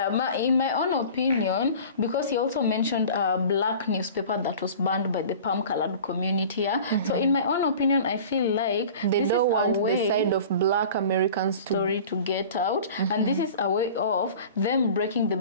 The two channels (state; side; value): inverted; both; correlation -0.41